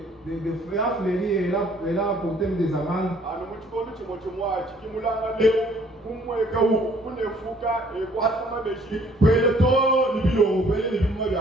fruits, a fleuri et elle a apporté des amandes.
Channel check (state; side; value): normal; both; correlation 0.59